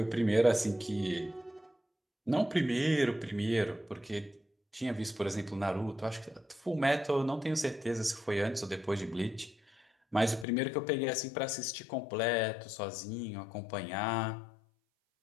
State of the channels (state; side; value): drops out; right; at 10.5 s